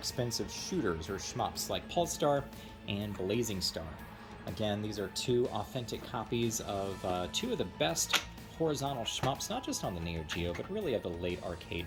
shooters or shmups like Pulse Star and Blazing Star. Again, these are two authentic copies of two of the best horizontal shmups, not just on the Neo-Geo, but really of the late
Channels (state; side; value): identical; both; correlation 1.00